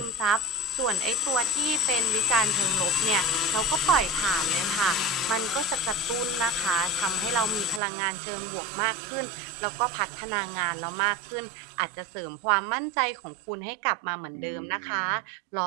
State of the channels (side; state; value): left; drops out; at 7.8 s